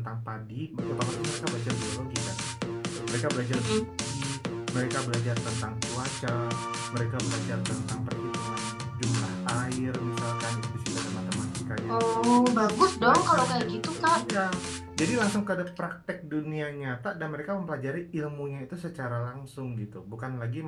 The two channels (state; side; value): identical; both; correlation 1.00